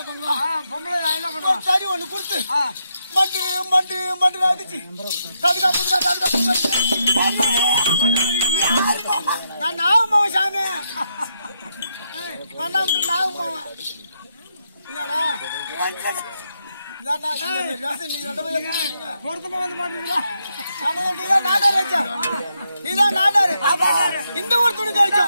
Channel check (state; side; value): inverted; both; correlation -0.81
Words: பண்ணுவான்? பொம்பளை நான் என்ன பண்ணுவேன்? சரி ஒண்ணு கொடுத்து மட்டு மட்டு மட்டு அடிச்சு தடுக்கா புதுக்கா தடுக்கா நான் நாகமாவன் சாமி நாகமாவன் என்னடா பொருத்தமா வந்து மாட்டீங்களா? இந்த ஊர் துணி